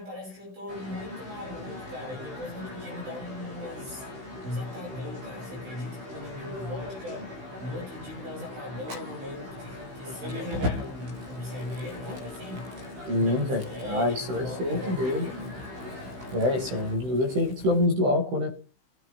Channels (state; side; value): late; left; 16 ms